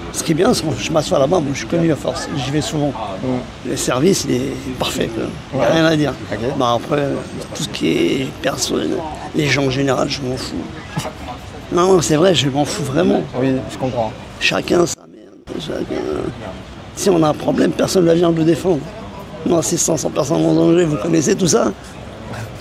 ce qui est bien, c'est que je m'assois là-bas. Moi, je suis connu à force. J'y vais souvent. Le service, il est parfait, quoi. Il n'y a rien à dire. Bah, après, tout ce qui est personne, les gens en général, je m'en fous. Non, c'est vrai, je m'en fous vraiment. Oui, je comprends. Chacun sa merde. Si on a un problème, personne ne vient le défendre. Non, c'est 500 personnes en danger, vous connaissez tout ça.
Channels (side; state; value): both; identical; correlation 1.00